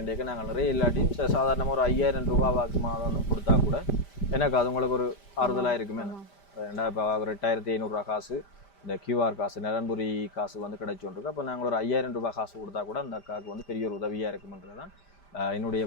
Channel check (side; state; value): right; late; 5.1 ms